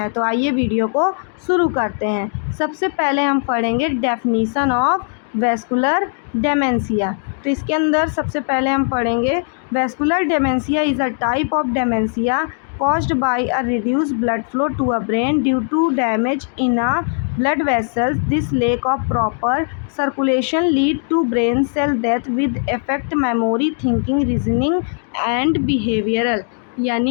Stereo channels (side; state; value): right; silent; 60 dB below the other